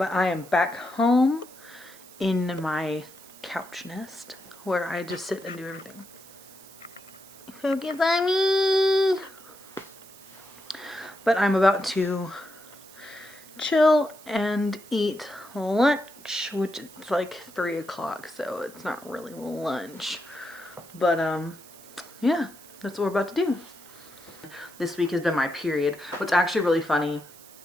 I am back home in my couch nest where I just sit and do everything. Focus on me. But I'm about to chill and eat lunch, which it's like 3 o'clock, so it's not really lunch. But yeah, that's what we're about to do. This week has been my period. What's actually really funny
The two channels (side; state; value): right; noise; hiss, 20 dB below the sound